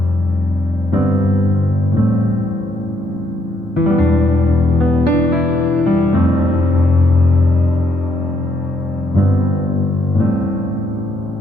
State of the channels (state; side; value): normal; both; correlation 0.73